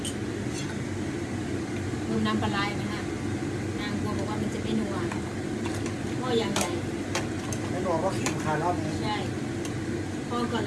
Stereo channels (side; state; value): both; identical; correlation 1.00